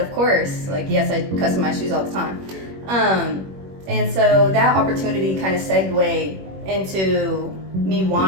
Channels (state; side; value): late; left; 21 ms